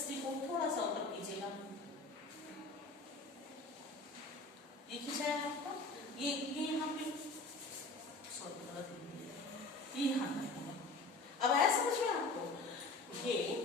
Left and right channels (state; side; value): quieter; right; 3.4 dB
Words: को थोड़ा सा ऊपर कीजिएगा, ये खींचाया आपका, ये यहाँ पे ये यहाँ। अब आया समझ में आपको, ये